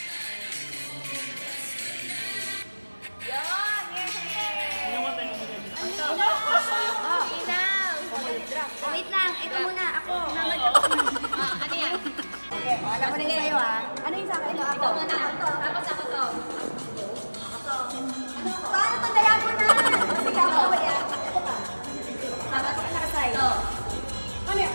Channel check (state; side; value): inverted; both; correlation -1.00